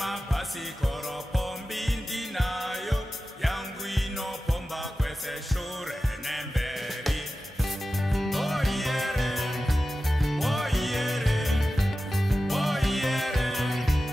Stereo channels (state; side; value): normal; both; correlation 0.94